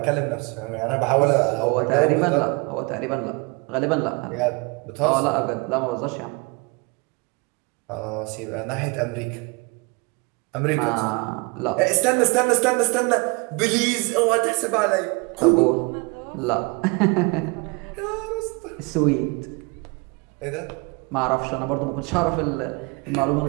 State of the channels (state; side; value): quieter; left; 28.9 dB